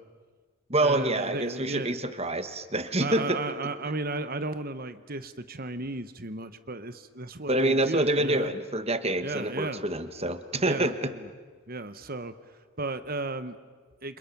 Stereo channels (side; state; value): both; normal; correlation 0.31